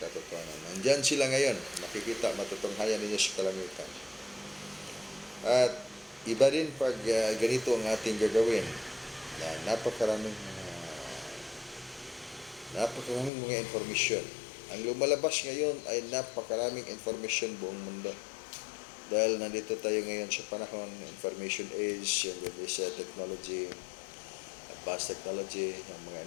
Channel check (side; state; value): right; drops out; at 13.3 s